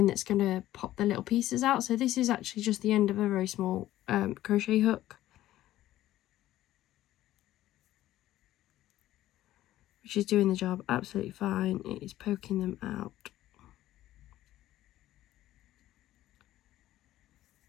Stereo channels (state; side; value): quieter; right; 14.3 dB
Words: that's going to pop the little pieces out. So this is actually just the end of a very small crochet hook, which is doing the job absolutely fine. It is poking them out.